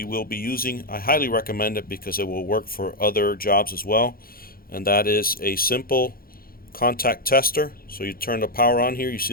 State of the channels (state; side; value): late; right; 0.43 ms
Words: will be using. I highly recommend it because it will work for other jobs as well, and that is a simple contact tester. So you turn the power on here, you